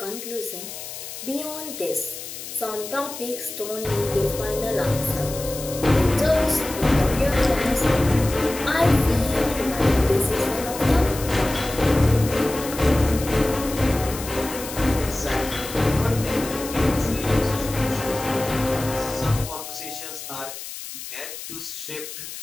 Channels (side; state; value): left; noise; hiss, 10 dB below the sound